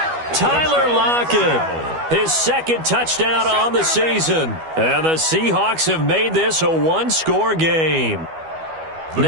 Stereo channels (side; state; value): left; late; 12 ms